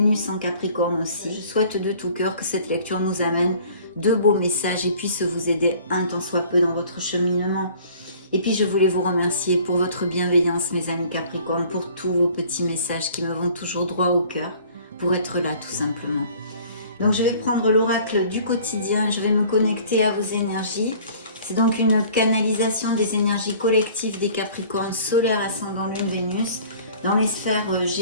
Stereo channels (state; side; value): inverted; both; correlation -0.51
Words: en Capricorne aussi. Je souhaite de tout cœur que cette lecture nous amène de beaux messages et puisse vous aider un tant soit peu dans votre cheminement. Et puis je voulais vous remercier pour votre bienveillance mes amis Capricorne, pour tous vos petits messages qui me vont toujours droit au cœur, pour être là tout simplement. Donc je vais prendre l'oracle du quotidien, je vais me connecter à vos énergies. C'est donc une canalisation des énergies collectives des Capricornes, solaire, ascendant, lune, Vénus, dans les sphères